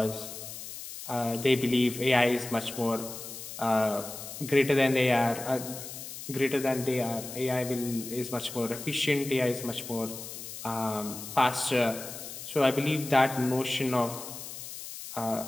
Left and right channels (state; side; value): noise; left; hiss, 10 dB below the sound